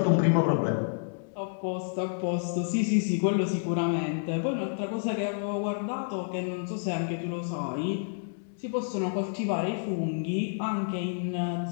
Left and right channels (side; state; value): right; silent; digital silence